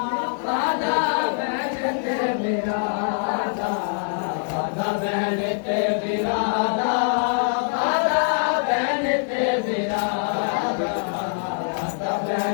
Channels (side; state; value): right; silent; 63 dB below the other